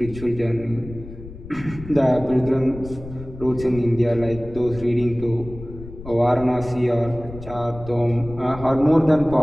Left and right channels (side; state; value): left; noise; rumble, 14 dB below the sound